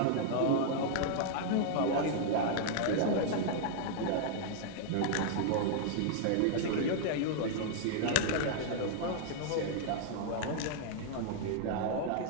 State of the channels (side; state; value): both; different; correlation -0.01